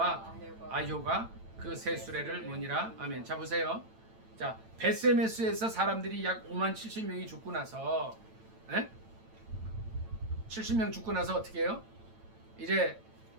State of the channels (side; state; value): left; late; 9.0 ms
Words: 아효가 그 새 수레를 모니라. 아멘. 자 보세요. 자 베세메스에서 사람들이 약 5만 70명이 죽고 나서 70명 죽고 나서 어떻게 해요? 이제